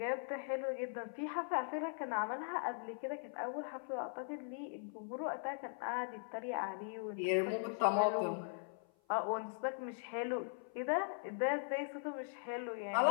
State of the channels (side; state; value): right; silent; 51 dB below the other